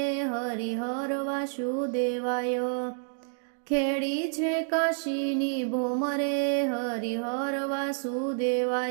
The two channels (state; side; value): silent; left; digital silence